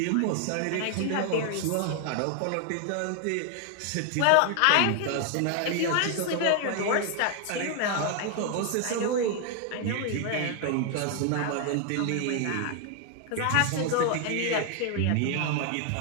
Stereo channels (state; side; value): different; both; correlation 0.00